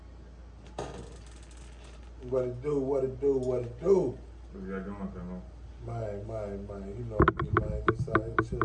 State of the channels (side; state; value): both; identical; correlation 1.00